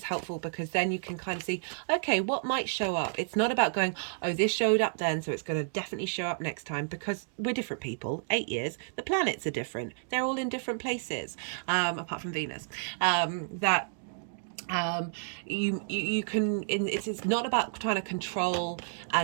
helpful because then you can kind of see, okay, what might show up. It's not about going, oh, this showed up then, so it's going to definitely show up next time, because we're different people. 8 years, the planets are different. They're all in different places, apart from Venus. You can, it's not about trying to control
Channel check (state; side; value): silent; left; digital silence